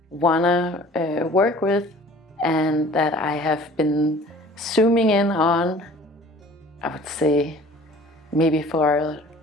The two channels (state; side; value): normal; both; correlation 0.48